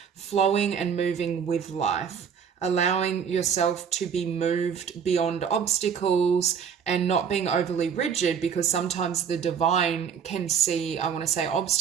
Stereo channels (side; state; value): left; quieter; 7.2 dB